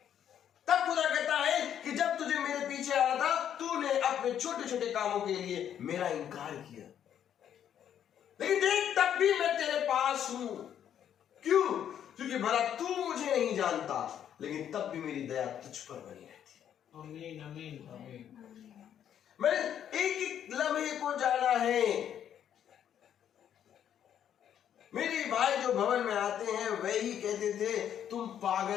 तब खुदा कहता है कि जब तुझे मेरे पीछे आना था, तूने अपने छोटे छोटे कामों के लिए मेरा इनकार किया, लेकिन देख तब भी मैं तेरे पास हूं। क्यों? क्योंकि भला तू मुझे नहीं जानता, लेकिन तब भी मेरी दया तुझ पर बनी रहती है। आमीन आमीन आमीन। मैंने एक एक लम्हे को जाना है। मेरे भाई जो भवन में आते हैं वही कहते थे, तुम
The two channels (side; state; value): right; quieter; 9.6 dB